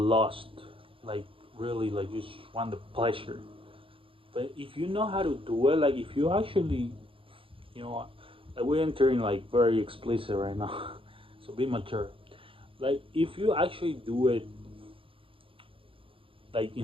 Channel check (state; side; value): late; left; 0.26 ms